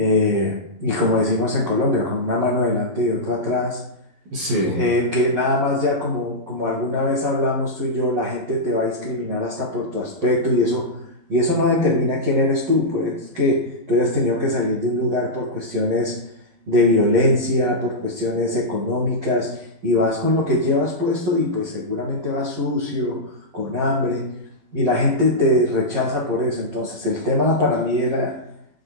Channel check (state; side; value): late; left; 12 ms